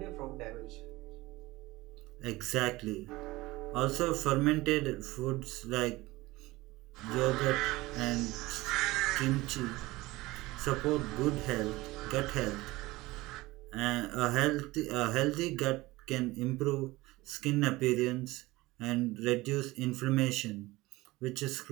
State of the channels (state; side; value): quieter; left; 20.0 dB